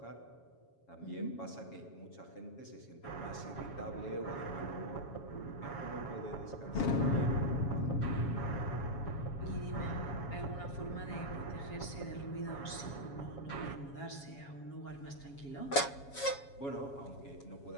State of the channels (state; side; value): late; right; 7.2 ms